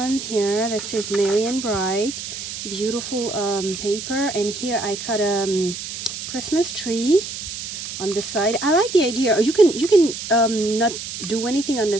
here that says Merry and Bright, beautiful paper. And here I cut a Christmas tree on the side. I like the idea. You can not do anything on the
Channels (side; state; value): right; noise; hiss, 8 dB below the sound